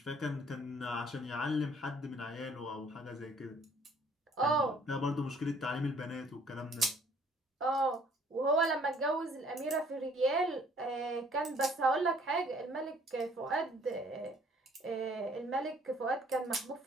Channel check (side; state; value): both; normal; correlation 0.59